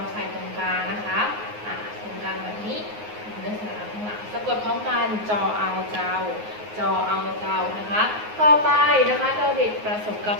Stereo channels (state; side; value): late; left; 9.5 ms